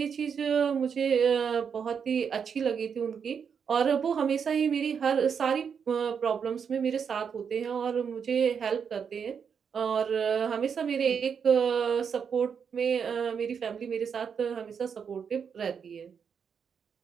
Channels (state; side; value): quieter; left; 6.8 dB